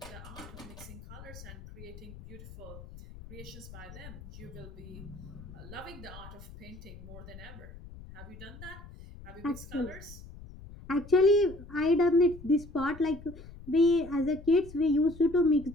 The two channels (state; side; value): noise; left; rumble, 16 dB below the sound